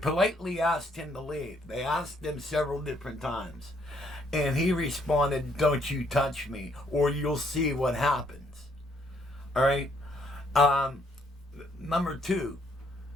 asked him to leave. They asked him several different times. And he responded, "Don't you touch me, or you'll see what happens." Alright? Number two,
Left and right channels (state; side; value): normal; both; correlation 0.69